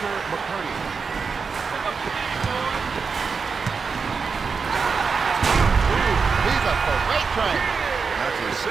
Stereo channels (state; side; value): quieter; left; 5.2 dB